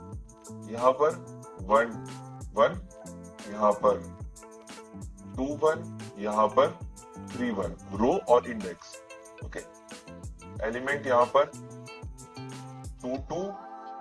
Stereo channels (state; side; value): identical; both; correlation 1.00